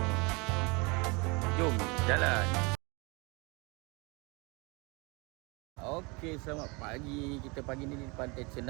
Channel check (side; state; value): left; quieter; 28.2 dB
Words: Jom jalan. Okey, selamat pagi. Kita pagi ni di Pantai